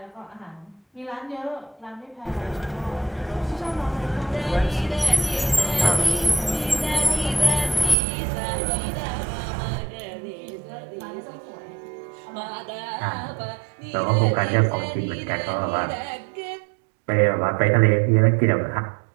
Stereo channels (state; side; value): drops out; left; at 8.0 s